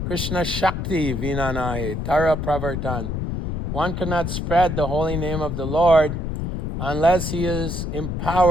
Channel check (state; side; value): noise; left; rumble, 3 dB below the sound